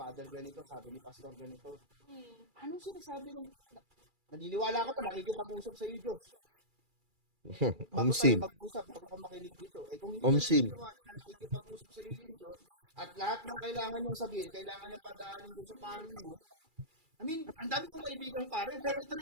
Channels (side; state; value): left; late; 2.3 ms